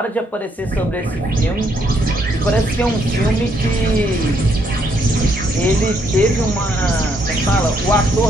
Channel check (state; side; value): normal; both; correlation 0.72